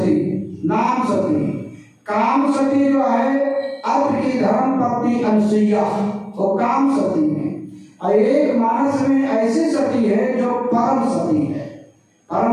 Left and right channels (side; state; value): both; identical; correlation 1.00